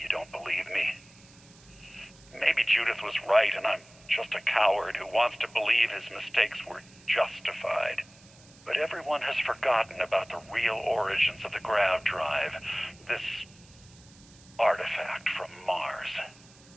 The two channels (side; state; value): right; noise; hiss, 25 dB below the sound